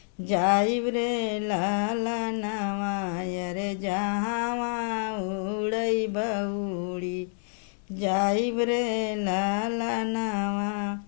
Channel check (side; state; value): right; silent; 59 dB below the other